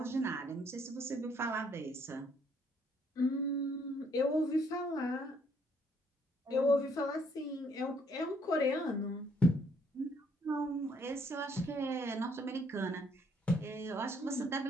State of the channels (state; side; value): normal; both; correlation 0.67